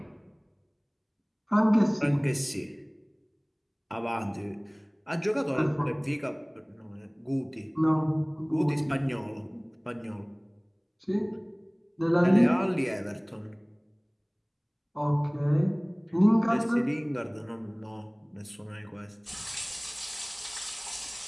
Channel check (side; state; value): both; identical; correlation 1.00